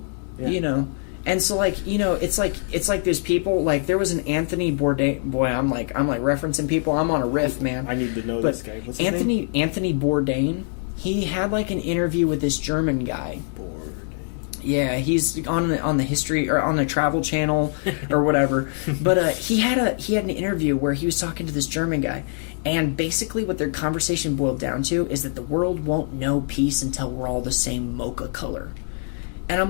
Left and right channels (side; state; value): right; silent; 56 dB below the other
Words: Yeah. And so, like, it's like there's people, like, there was an Anthony Bourdain. Boy, I'm like referencing people. I'm on a riff, man. I need to know this guy. What's his name? Anthony Bourdain. He had like an interview with this German guy. Bourdain. Yeah, he's on the history or on the Travel Channel or whatever. But he had an interview where he was talking to this German guy, and basically what their conversation boiled down to is that the world won't know peace until we're all the same mocha color. And I'm